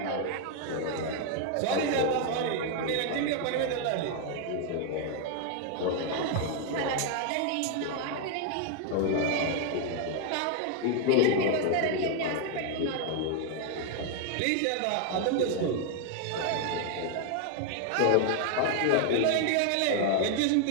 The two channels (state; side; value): different; both; correlation 0.00